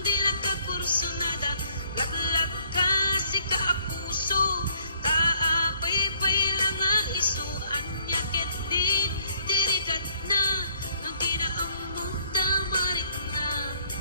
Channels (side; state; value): both; inverted; correlation -0.63